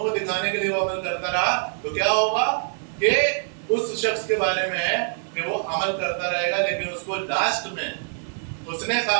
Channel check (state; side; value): silent; left; 62 dB below the other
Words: دکھانے کے لیے وہ عمل کرتا رہا تو کیا ہوگا کہ اس شخص کے بارے میں ہے کہ وہ عمل کرتا رہے گا لیکن اس کو لاسٹ میں حسن